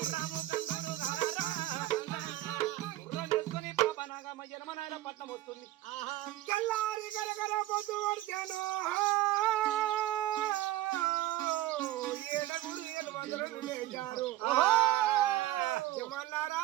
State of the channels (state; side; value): quieter; left; 15.2 dB